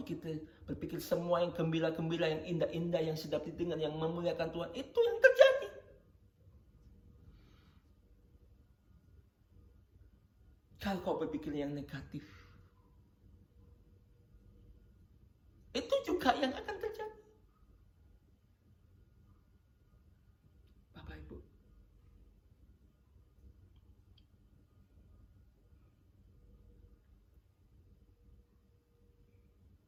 semua yang gembira-gembira, yang indah-indah, yang sedap didengar, yang memuliakan Tuhan, itu yang terjadi. Kalau kau berpikir yang negatif, itu juga yang akan terjadi. Bapak Ibu.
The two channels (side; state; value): both; identical; correlation 1.00